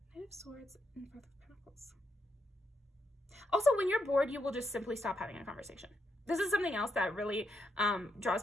Knight of Swords and Five of Pentacles. Also, when you're bored, you will just simply stop having a conversation. This is something else that really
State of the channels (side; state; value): both; normal; correlation 0.81